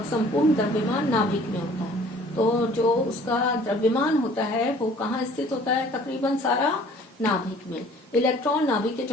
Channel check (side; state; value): both; normal; correlation 0.52